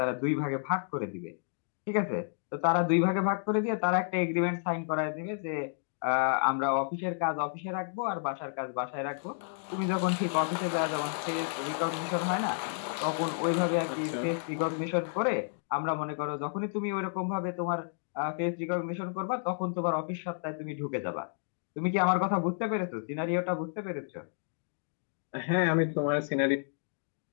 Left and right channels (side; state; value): right; silent; digital silence